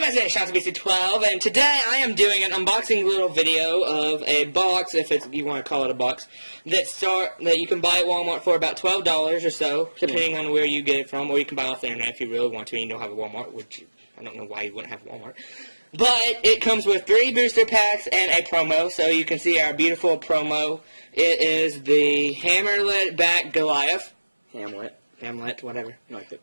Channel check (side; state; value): both; inverted; correlation -1.00